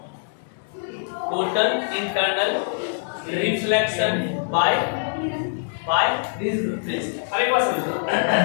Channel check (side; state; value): right; silent; digital silence